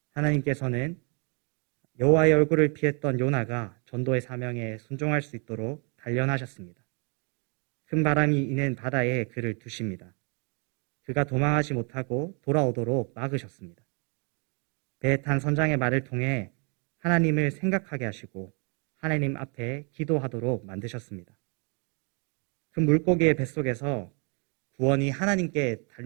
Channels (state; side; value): quieter; left; 36.0 dB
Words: 하나님께서는 여호와의 얼굴을 피했던 요나가 전도의 사명에 순종할 수 있도록 단련하셨습니다. 큰 바람이 이는 바다에 그를 두십니다. 그가 도망하지 못하고 돌아오도록 막으셨습니다. 배에 탄 선장의 말을 통해 하나님을 생각하게 하시고 하나님 앞에 기도하도록 만드셨습니다. 큰 물고기의 뱃속에서 구원이 하나님께